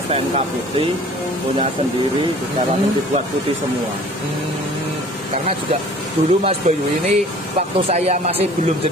STNK putih punya sendiri, sekarang dibuat putih semua. Karena juga dulu Mas Bayu ini waktu saya masih belum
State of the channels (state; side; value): normal; both; correlation 0.49